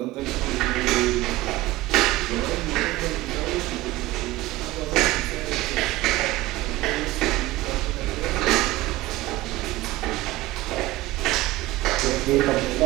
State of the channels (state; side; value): quieter; left; 17.9 dB